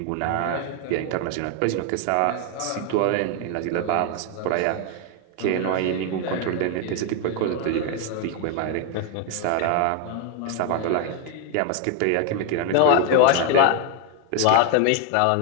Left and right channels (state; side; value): different; both; correlation 0.01